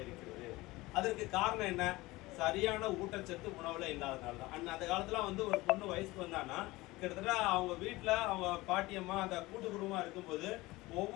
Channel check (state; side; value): quieter; right; 20.3 dB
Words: இருக்கிறது. அதற்கு காரணம் என்ன? சரியான ஊட்டச்சத்து உணவுல இல்லாதனால தான். அந்த காலத்துல வந்து ஒரு பொண்ணு வயசுக்கு வந்தான்னா கிட்டத்தட்ட அவங்க வீட்டுல அவங்க பாட்டியம்மா அந்த கூட்டு குடும்பமா இருக்கும்போது